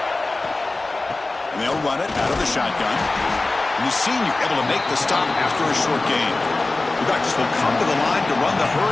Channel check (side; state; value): right; quieter; 3.2 dB